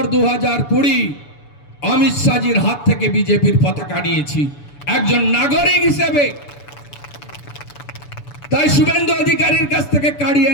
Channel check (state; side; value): late; right; 6.9 ms